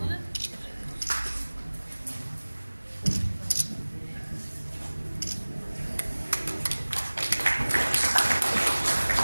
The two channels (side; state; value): both; inverted; correlation -1.00